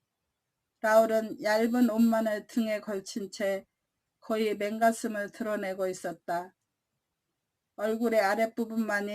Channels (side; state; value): both; identical; correlation 1.00